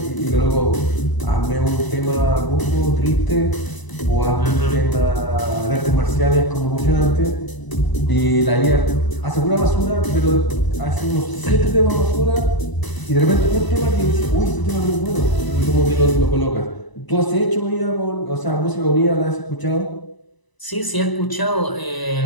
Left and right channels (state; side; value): late; right; 1.0 ms